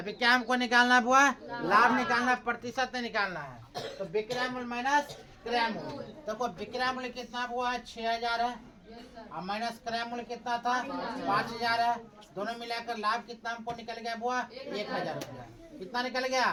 क्या हमको निकालना हुआ? लाभ निकालना, प्रतिशत नहीं निकालना है। तो विक्रय मूल माइनस क्रय मूल्य। देखो विक्रय मूल्य कितना हुआ है 6000 है और माइनस क्रय मूल्य कितना था 5000 है। दोनों मिलाकर लाभ कितना हमको निकल गया हुआ 1000 रुपया। कितना निकल गया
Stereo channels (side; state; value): both; identical; correlation 1.00